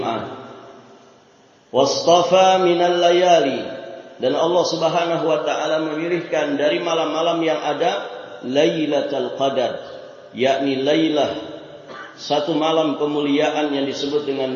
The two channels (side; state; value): both; identical; correlation 1.00